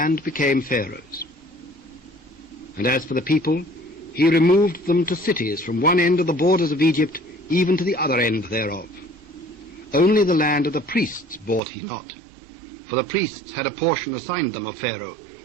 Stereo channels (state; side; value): drops out; left; at 11.6 s